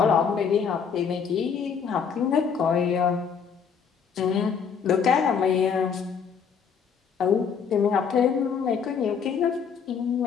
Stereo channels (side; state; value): right; quieter; 6.7 dB